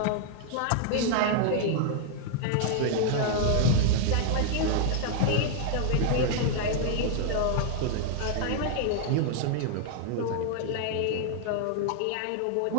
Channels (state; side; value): different; both; correlation -0.01